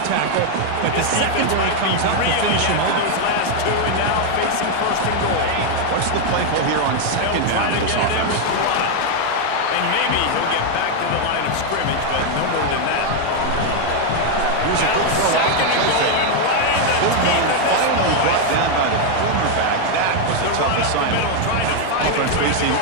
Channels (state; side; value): different; both; correlation 0.01